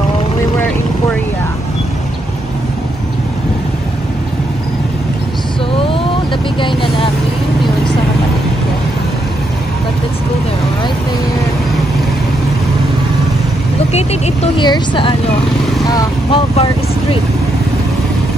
we were in Korea. So nabigay na namin yun sa kapatid ko. But let's go there, right there. Located ito here sa Malvar Street.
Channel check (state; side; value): normal; both; correlation 0.79